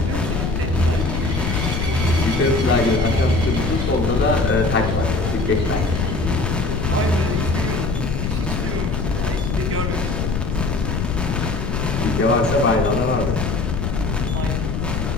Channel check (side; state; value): left; noise; rumble, 1 dB below the sound